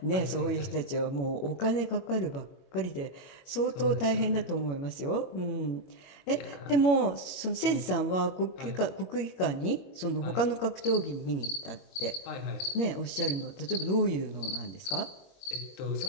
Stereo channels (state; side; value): late; right; 21 ms